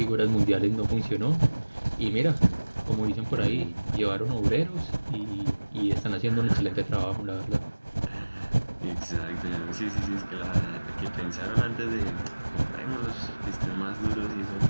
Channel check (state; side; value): inverted; both; correlation -1.00